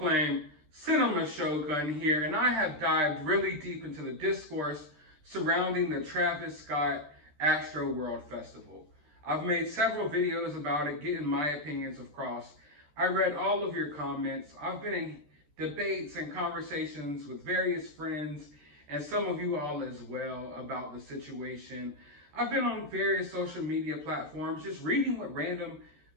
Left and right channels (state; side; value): late; left; 13 ms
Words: Cinema Shogun here, and I have dived really deep into the discourse surrounding the Travis Scott AstroWorld Festival. I've made several videos about it, getting my opinions across. I read all of your comments. I've been in debates and conversations with various friends and some of you all as well about the situation. I've been on various social media platforms just reading what random